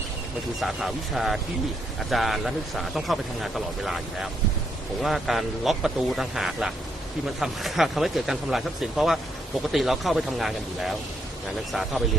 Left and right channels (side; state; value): both; normal; correlation 0.75